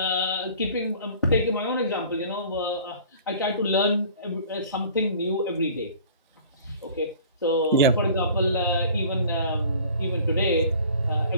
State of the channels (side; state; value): both; inverted; correlation -0.47